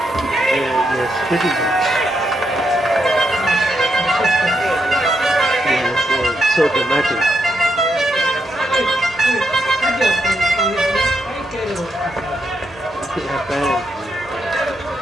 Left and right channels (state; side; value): normal; both; correlation 0.80